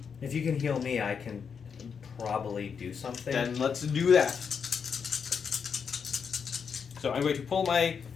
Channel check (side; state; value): right; quieter; 6.5 dB